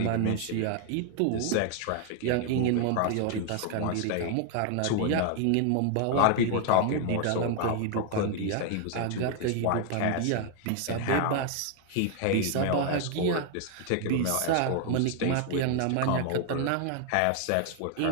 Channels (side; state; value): both; different; correlation 0.00